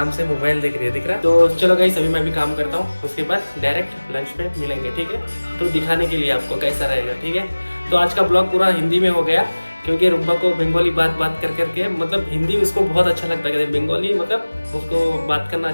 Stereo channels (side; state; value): both; inverted; correlation -1.00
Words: से मोबाइल देख रही है, दिख रहा है। तो चलो गाइस अभी मैं भी काम करता हूँ, उसके बाद डायरेक्ट लंच पे मिलेंगे, ठीक है। तो दिखाने के लिए आपको कैसा रहेगा, ठीक है। तो आज का ब्लॉग पूरा हिंदी में हो गया, क्योंकि रुम्बा को बंगाली बात कर करके, मतलब हिंदी उसको बहुत अच्छा लगता है, बंगाली मतलब उसको बात करना